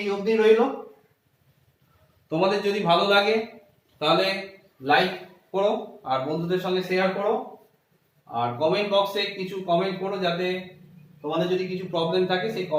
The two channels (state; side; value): identical; both; correlation 1.00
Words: অবধি রইলো। তোমাদের যদি ভালো লাগে তাহলে লাইক করো আর বন্ধুদের সঙ্গে শেয়ার করো, আর কমেন্ট বক্সে কিছু কমেন্ট করো, যাতে তোমাদের যদি কিছু প্রবলেম থাকে সেই